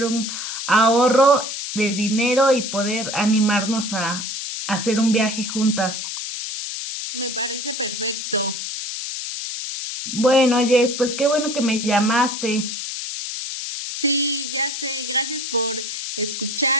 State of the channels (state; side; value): noise; left; hiss, 5 dB below the sound